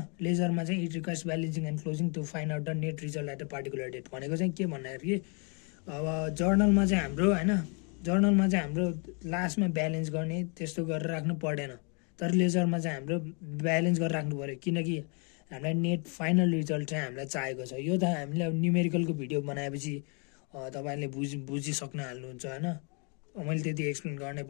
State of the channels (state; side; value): quieter; right; 36.0 dB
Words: लेजरमा चाहिँ it requires balancing and closing to find out the net result at a particular date भनेको चाहिँ के भन्दाखेरि अब जर्नलमा चाहिँ हाम्रो लास्टमा ब्यालेन्स गर्ने त्यस्तो गरेर राख्नु पर्दैन, तर लेजरमा चाहिँ हाम्रो ब्यालेन्स गरेर राख्नु पऱ्यो, किनकि हामीलाई नेट फाइनल रिजल्ट चाहिँ हामीलाई चाहिएको छ। यो त हामीले अब न्युमेरिकलको भिडियो बनाएपछि तपाईँले बुझिसक्न हाल्नुहुन्छ होइन, मैले त्यति एक्सप्लेन गर्नै